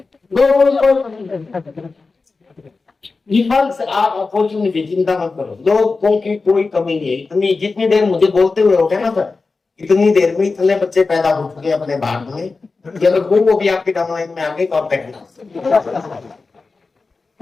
से आप अपॉर्चुनिटी चिंता मत करो, लोगों की कोई कमी नहीं है। इतनी जितनी देर मुझे बोलते हुए हो गया ना सर, इतनी देर में इतने बच्चे पैदा हो चुके अपने भारत में कि अगर वो भी आपकी डाउनलाइन में आ गए तो आप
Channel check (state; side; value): quieter; right; 4.0 dB